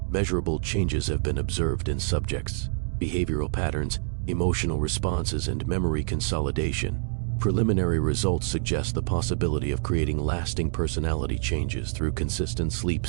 measurable changes have been observed in subjects. Behavioral patterns, emotional responses, and memory consolidation. Preliminary results suggest the possibility of creating lasting personality changes through consistent sleep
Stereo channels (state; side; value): silent; left; 60 dB below the other